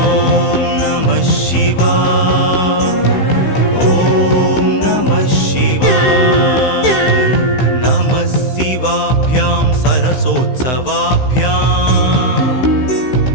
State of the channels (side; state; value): right; late; 15 ms